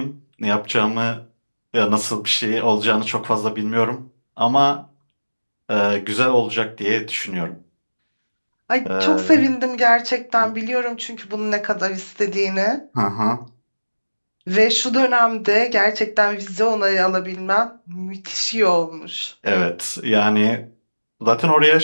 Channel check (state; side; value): inverted; both; correlation -1.00